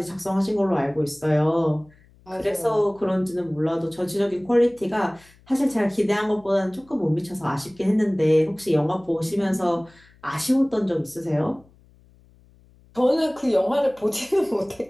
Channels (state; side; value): noise; left; hum, 29 dB below the sound